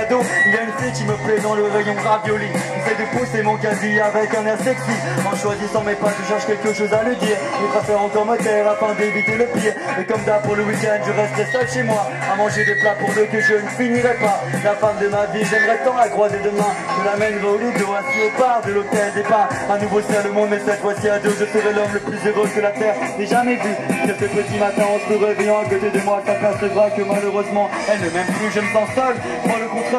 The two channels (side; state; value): both; identical; correlation 1.00